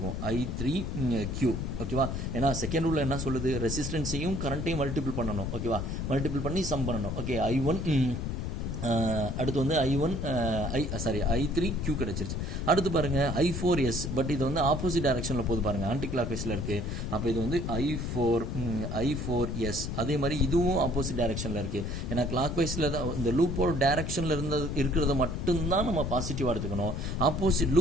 I3Q. ஓகேவா? ஏன்னா செகண்ட் ரூலில் என்ன சொல்லுது? ரெசிஸ்டன்ஸையும் கரண்ட்டையும் மல்டிபிள் பண்ணணும். ஓகேவா? மல்டிபிள் பண்ணி சம் பண்ணணும். ஓகே, அடுத்து வந்து I3Q கிடைச்சிருச்சு. அடுத்து பாருங்க I4S. பட் இது வந்து ஆப்போசிட் டைரக்ஷனில் போகுது பாருங்க, ஆன்டி கிளாக் வைஸில் இருக்குது. அப்போ இது வந்து I4S. அதே மாதிரி இதுவும் ஆப்போசிட் டைரக்ஷனில் இருக்குது. ஏன்னா கிளாக் வைஸில் தான் இந்த லூப்போட டைரக்ஷனில் இருக்கிறத மட்டும்தான் நம்ம பாசிட்டிவாக எடுத்துக்கணும். ஆப்போசிட்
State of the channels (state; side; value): noise; left; rumble, 3 dB below the sound